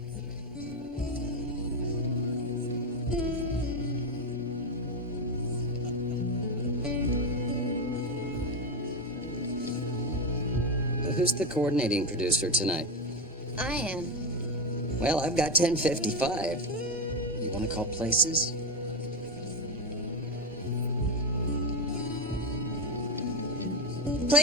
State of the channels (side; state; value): both; normal; correlation 0.13